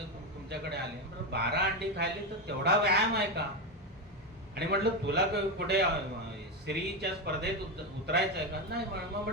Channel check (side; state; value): both; normal; correlation 0.12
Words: तुमच्याकडे आले. म्हटलं 12 अंडी खायले तर तेवढा व्यायाम आहे का. आणि म्हटलं तुला कुठे स्त्रीच्या स्पर्धेत उतरायचं आहे का. नाही. मग